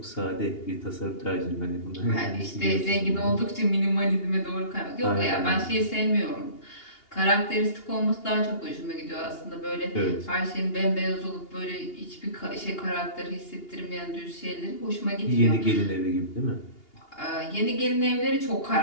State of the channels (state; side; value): late; right; 2.8 ms